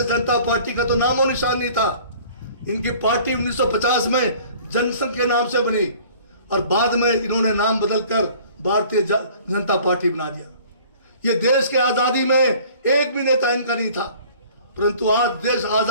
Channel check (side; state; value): both; inverted; correlation -0.51